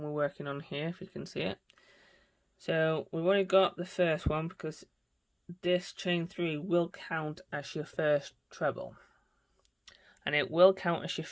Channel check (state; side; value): identical; both; correlation 1.00